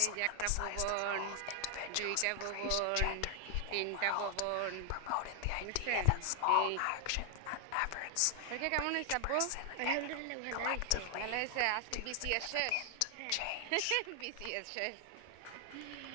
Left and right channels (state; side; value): different; both; correlation 0.00